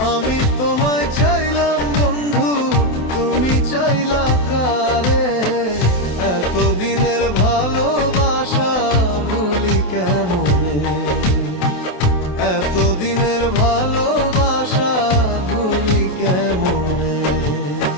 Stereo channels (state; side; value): late; right; 27 ms